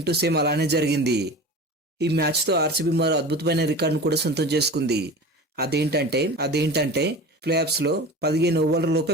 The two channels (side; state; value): both; normal; correlation 0.34